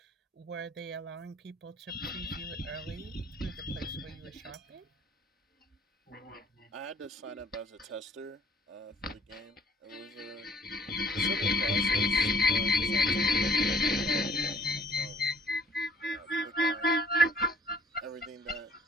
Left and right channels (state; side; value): normal; both; correlation 0.57